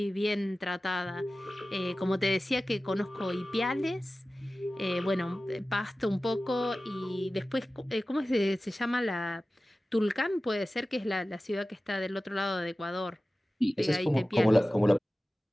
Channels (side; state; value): both; normal; correlation 0.96